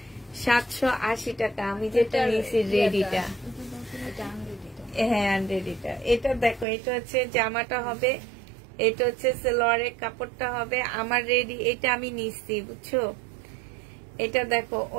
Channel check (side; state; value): left; drops out; at 6.7 s